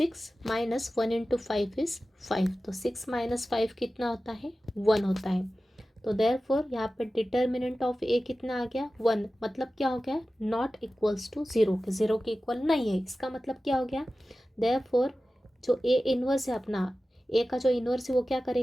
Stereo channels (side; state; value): both; normal; correlation 0.95